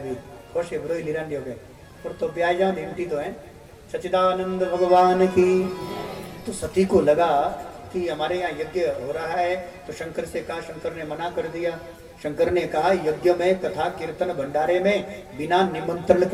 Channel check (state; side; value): identical; both; correlation 1.00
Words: भी खुश है, बुरो लिरान हो गए, पर तो ब्याह जाओ घंटी तो है। सच्चिदानंद भगवान की। तो सती को लगा कि हमारे यहाँ यज्ञ हो रहा है, तो शंकर से कहा, शंकर ने मना कर दिया। शंकर ने कहा यज्ञ में कथा कीर्तन भंडारे में बिना निमंत्रण